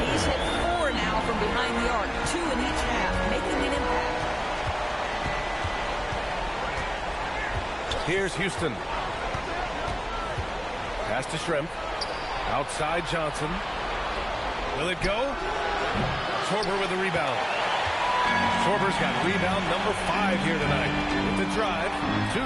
He's hit 4 now from behind the arc. 2 in each half, making an impact. Here's Houston. Pass to Shrimp. Outside Johnson. Will it go? Schwarber with the rebound. Schwarber's got rebound number 5 here tonight. With the drive,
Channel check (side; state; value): both; identical; correlation 1.00